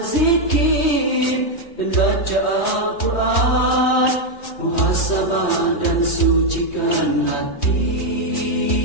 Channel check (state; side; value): late; right; 3.0 ms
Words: dan baca Al-Quran, muhasabah dan sucikan